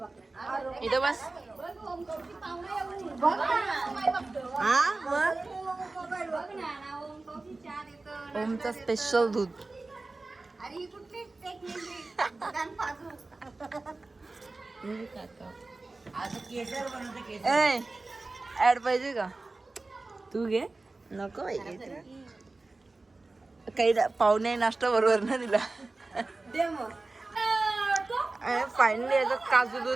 इथं बस. ओमचं स्पेशल दूध ऍड पाहिजे का तू घे नको काही पाहुणे नाश्ता बरोबर ना दिला. फायनली याचं काजू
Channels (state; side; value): quieter; left; 3.3 dB